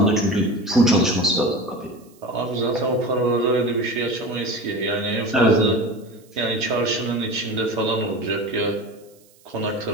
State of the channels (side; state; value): right; noise; hiss, 30 dB below the sound